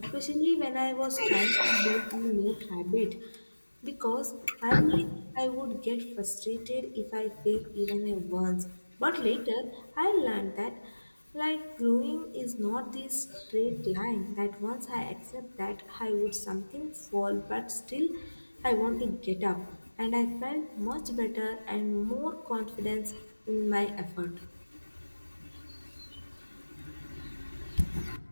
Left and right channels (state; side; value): inverted; both; correlation -1.00